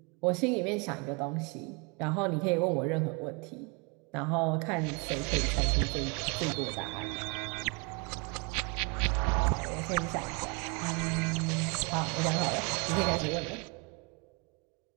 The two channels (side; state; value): left; quieter; 31.9 dB